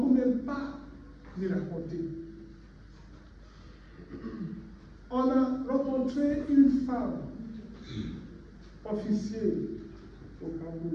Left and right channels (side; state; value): both; identical; correlation 1.00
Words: même pas les raconter. On a rencontré une femme officielle au